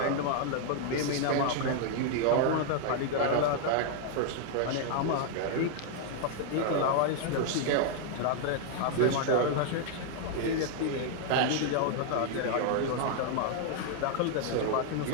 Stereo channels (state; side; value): different; both; correlation 0.00